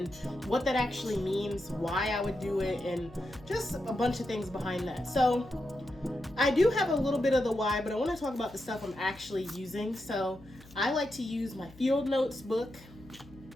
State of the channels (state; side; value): noise; left; hum, 22 dB below the sound